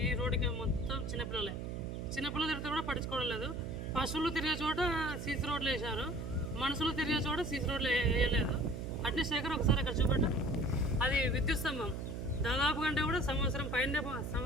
ఈ రోడ్డుకి, మొత్తం చిన్నపిల్లలు తిరుగుతూ కూడా పట్టించుకోవడం లేదు. పశువులు తిరిగే చోట సీసీ రోడ్లు వేశారు, మనుషులు తిరిగే చోట సీసీ రోడ్లు వేయలేదు. అట్నీ శేఖర్ ఒకసారి అక్కడ చూపెట్టు. అది విద్యుత్ స్తంభం దాదాపు కంటే కూడా సంవత్సరం పైన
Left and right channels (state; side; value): noise; right; hum, 5 dB below the sound